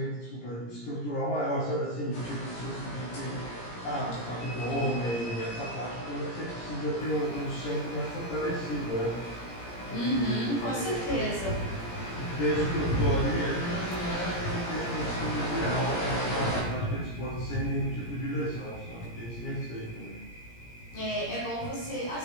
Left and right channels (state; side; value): late; right; 17 ms